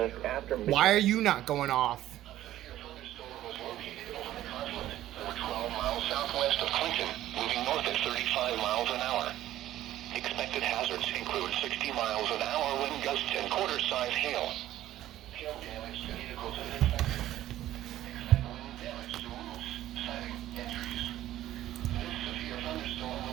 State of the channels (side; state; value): left; quieter; 13.6 dB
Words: after Why are you not going off? over 12 miles southwest of Clinton, moving north at 35 miles an hour. Expected hazards include 60 miles an hour wind gusts and quarter-size hail. Hail damage to vehicles is expected. Expect wind damage to roofs, siding, and trees. This severe thunderstorm